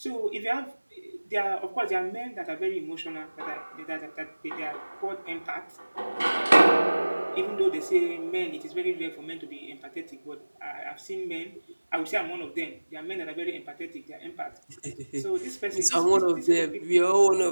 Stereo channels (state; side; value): inverted; both; correlation -1.00